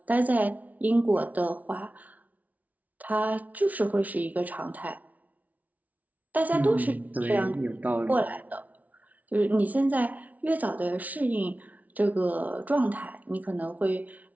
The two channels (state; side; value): late; left; 0.073 ms